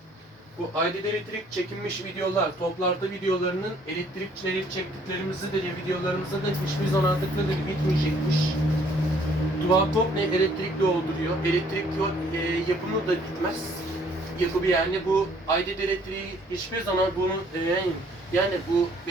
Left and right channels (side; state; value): both; normal; correlation 0.61